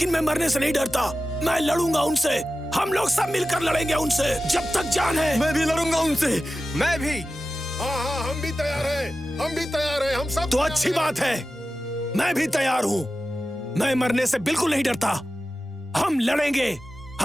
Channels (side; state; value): both; normal; correlation 0.94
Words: मैं मरने से नहीं डरता। मैं लड़ूंगा उनसे। हम लोग सब मिलकर लड़ेंगे उनसे जब तक जान है। मैं भी लड़ूंगा उनसे। मैं भी। हाँ, हम भी तैयार हैं। हम भी तैयार हैं। हम सब तो अच्छी बात है, मैं भी तैयार हूं। मैं मरने से बिल्कुल नहीं डरता। हम